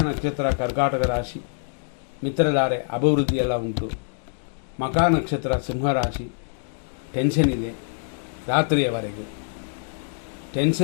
ನಕ್ಷತ್ರ ಕರ್ಕಾಟಕ ರಾಶಿ. ಮಿತ್ರಧಾರೆ, ಅಭಿವೃದ್ಧಿ ಎಲ್ಲ ಉಂಟು. ಮಕಾ ನಕ್ಷತ್ರ ಸಿಂಹರಾಶಿ. ಟೆನ್ಷನ್ ಇದೆ ರಾತ್ರಿಯವರೆಗೂ.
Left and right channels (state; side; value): silent; right; digital silence